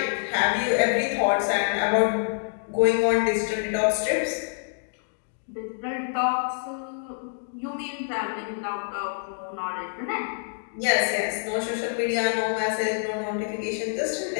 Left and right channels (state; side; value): silent; right; digital silence